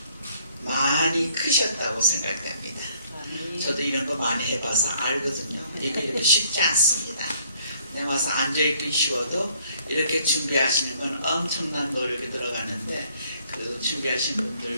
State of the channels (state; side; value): inverted; both; correlation -0.63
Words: 많이 크셨다고 생각됩니다. 저도 이런 거 많이 해봐서 알거든요. 이게 쉽지 않습니다. 내 와서 앉아있기 쉬워도 이렇게 준비하시는 건 엄청난 노력이 들어가는데 그 준비하신